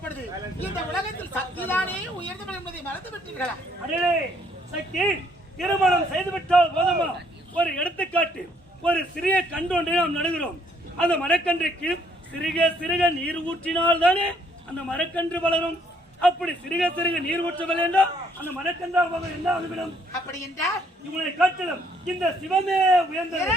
பொழுது இந்த உலகத்தில் சக்திதானே உயர்ந்தவள் என்பதை மறந்து விட்டீர்களா? அடே சக்தி, திருமணம் செய்துவிட்டால் போதுமா? ஒரு எடுத்துக்காட்டு, ஒரு சிறிய கன்று ஒன்றை நாம் நடுகிறோம். அந்த மரக்கன்றுக்கு சிறுக சிறுக நீர் ஊற்றினால் தானே அந்த மரக்கன்று வளரும். அப்படி சிறுக சிறுக நீர் ஊற்றவில்லை என்றால் அந்த மரக்கன்றாக என்ன ஆகிவிடும்? அப்படி என்றால் இவனை காட்டிலும் இந்த சிவமே உயர்ந்தது.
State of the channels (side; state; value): both; normal; correlation 0.67